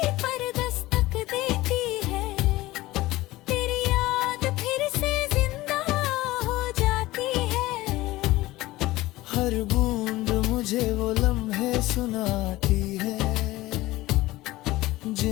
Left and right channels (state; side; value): quieter; right; 18.2 dB